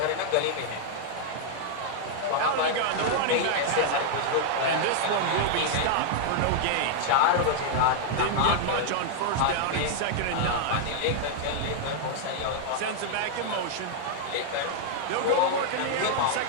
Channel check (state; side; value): different; both; correlation -0.01